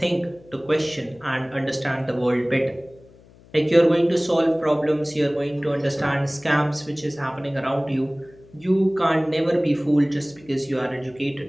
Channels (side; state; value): left; noise; hum, 25 dB below the sound